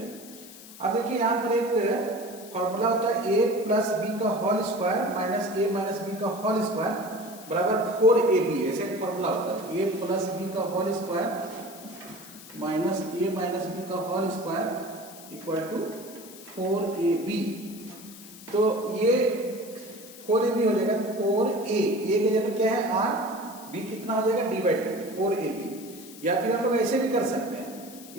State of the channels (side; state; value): left; noise; hiss, 17 dB below the sound